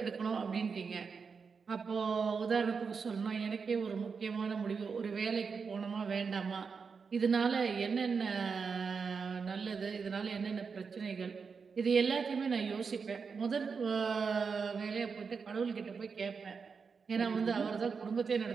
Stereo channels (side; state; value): left; quieter; 5.5 dB